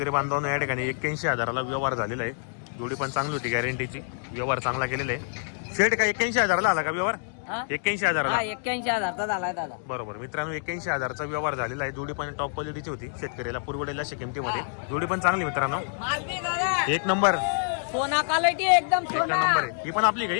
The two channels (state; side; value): silent; right; 60 dB below the other